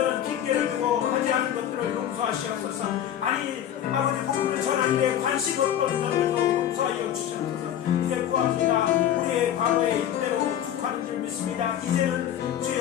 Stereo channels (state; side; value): quieter; right; 10.6 dB